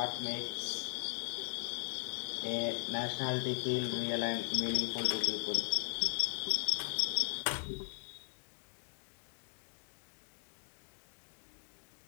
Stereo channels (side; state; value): right; silent; digital silence